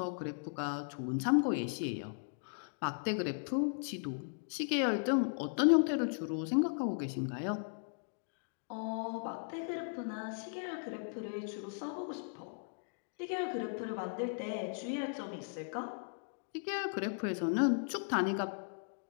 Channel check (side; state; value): right; silent; digital silence